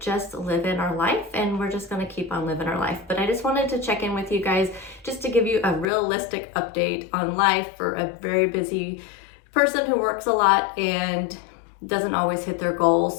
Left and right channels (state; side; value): drops out; right; at 5.9 s